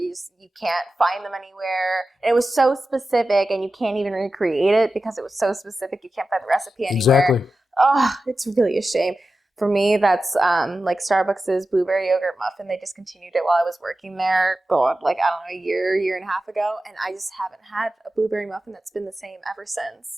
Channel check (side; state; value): both; normal; correlation 0.93